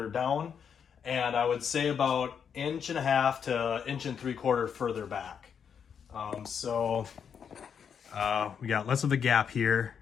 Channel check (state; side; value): quieter; right; 7.3 dB